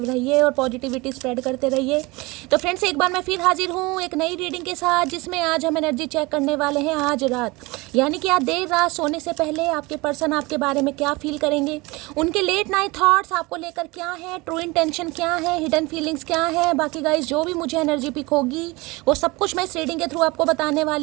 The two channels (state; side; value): quieter; left; 23.7 dB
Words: रहिए और पॉजिटिविटी स्प्रेड करते रहिए। तो फ्रेंड्स एक बार मैं फिर हाजिर हूँ एक नई रीडिंग के साथ, जिसमें आज हम एनर्जी चेक करने वाले हैं आज रात, यानी कि आज देर रात सोने से पहले आपके पर्सन आपके बारे में क्या फील करेंगे, उनके लेट नाइट थॉट्स आपको लेकर क्या है, ट्रू इंटेंशन क्या है, हिडन फीलिंग्स क्या है। बाकी गाइस जो भी मुझे एनर्जी पिक होगी वो सब कुछ मैं इस रीडिंग के थ्रू आपको बताने